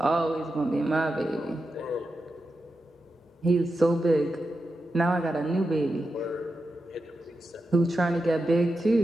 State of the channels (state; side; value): normal; both; correlation 0.89